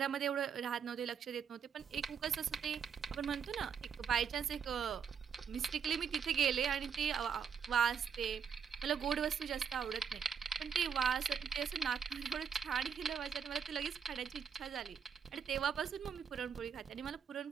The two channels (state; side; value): quieter; left; 7.0 dB